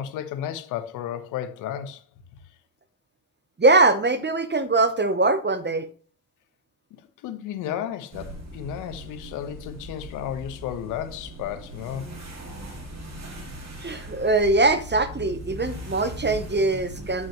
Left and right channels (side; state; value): both; normal; correlation -0.12